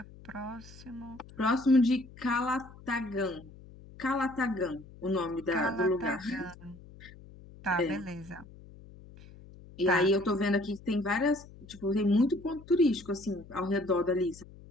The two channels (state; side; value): noise; left; hum, 20 dB below the sound